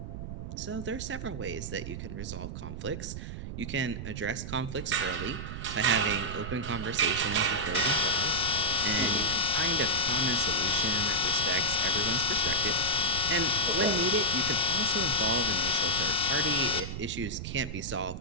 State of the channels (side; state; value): right; noise; rumble, 7 dB below the sound